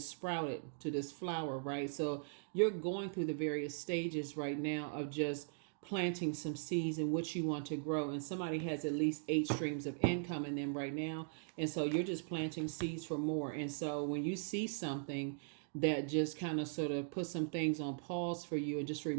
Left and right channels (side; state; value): left; silent; digital silence